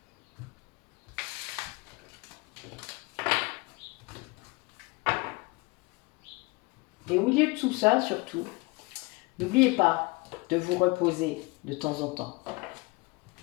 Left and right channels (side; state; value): right; quieter; 25.2 dB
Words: Et au milieu de tout ça, surtout, n'oubliez pas de vous reposer de temps en temps.